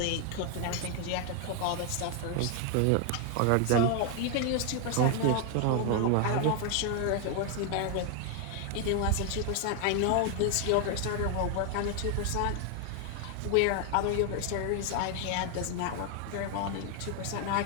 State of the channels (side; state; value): both; different; correlation 0.00